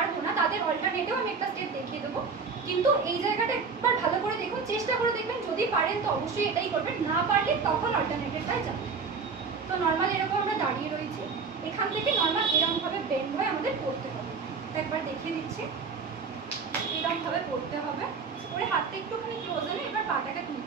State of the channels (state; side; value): quieter; left; 5.1 dB